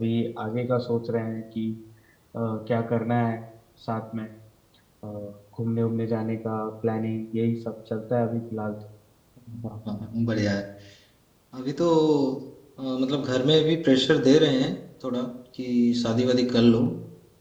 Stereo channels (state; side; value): identical; both; correlation 1.00